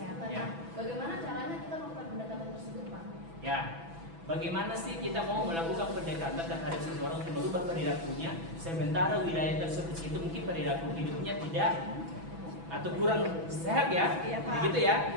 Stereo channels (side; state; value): left; late; 6.0 ms